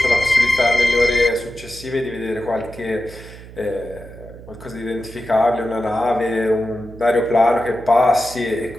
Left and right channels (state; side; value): noise; right; hum, 17 dB below the sound